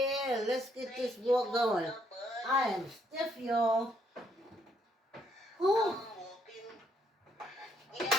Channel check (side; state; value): both; normal; correlation 0.71